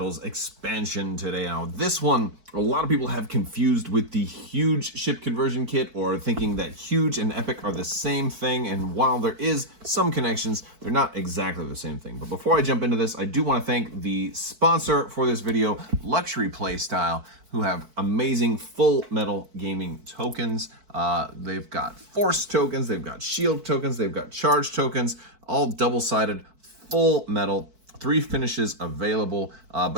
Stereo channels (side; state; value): left; late; 4.5 ms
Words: expansion today. Now, this one, a lot of people have confused with the huge ship conversion kit, or thinking that huge and epic are the same thing. And while there is some connections, they're not exactly the same thing. But before I jump into this, I do want to thank the sponsor for this video, Luxury Playstyle, who have amazing full metal gaming tokens. They've got force tokens, they've got shield tokens, they've got charge tokens, all double-sided, full metal, 3 finishes available.